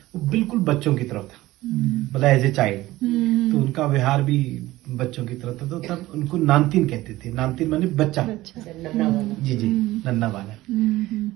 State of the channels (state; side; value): quieter; left; 17.4 dB